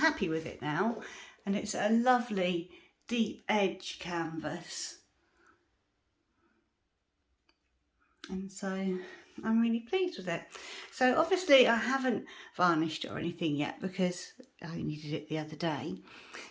with it now, and it's a lovely deep edge canvas. And so I'm really pleased with it. So obviously I haven't varnished it or anything yet because I only did it the other day.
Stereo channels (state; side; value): identical; both; correlation 1.00